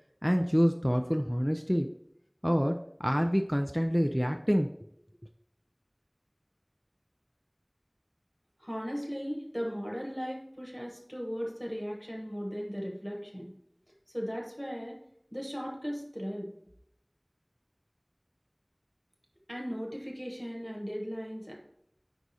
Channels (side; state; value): both; identical; correlation 1.00